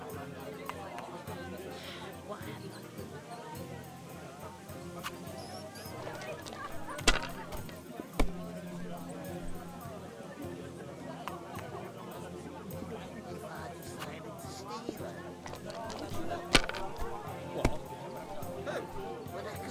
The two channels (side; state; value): both; identical; correlation 1.00